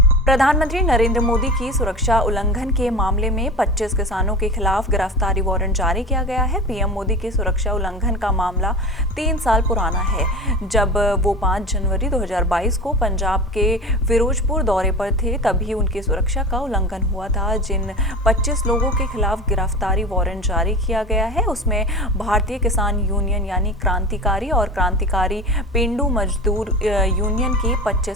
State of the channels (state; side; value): normal; both; correlation 0.32